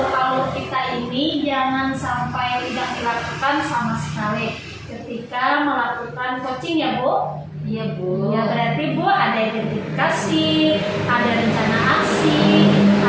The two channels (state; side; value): identical; both; correlation 1.00